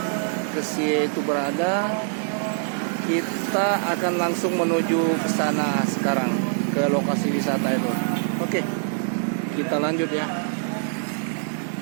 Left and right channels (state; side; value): silent; left; digital silence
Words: Kesie itu berada, kita akan langsung menuju ke sana sekarang, ke lokasi wisata itu. Oke, kita lanjut ya